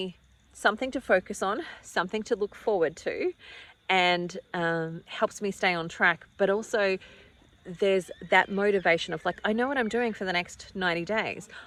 something to focus on, something to look forward to, and helps me stay on track. But also there's that motivation of like, I know what I'm doing for the next 90 days.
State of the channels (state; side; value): identical; both; correlation 1.00